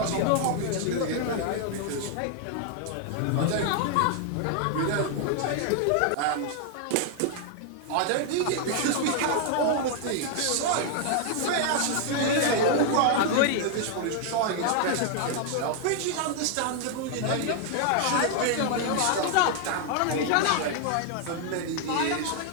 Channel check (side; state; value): both; different; correlation 0.00